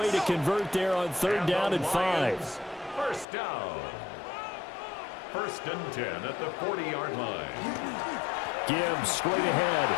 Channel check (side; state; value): right; drops out; at 3.2 s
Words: to convert there on 3rd down and 5. First down. 1st and 10 at the 40-yard line. Gibbs straight ahead.